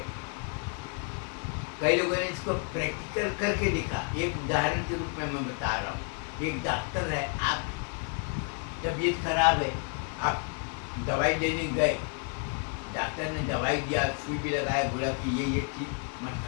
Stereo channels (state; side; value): quieter; right; 37.1 dB